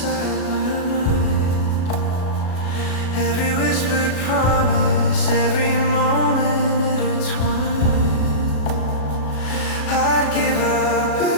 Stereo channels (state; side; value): late; right; 37 ms